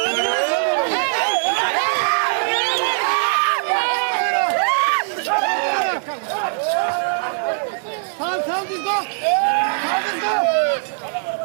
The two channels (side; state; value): left; silent; digital silence